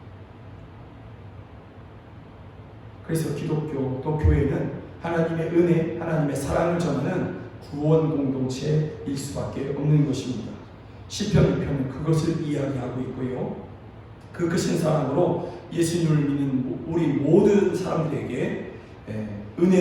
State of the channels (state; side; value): identical; both; correlation 1.00